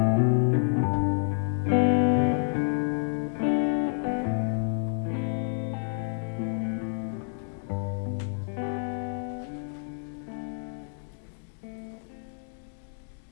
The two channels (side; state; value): right; silent; digital silence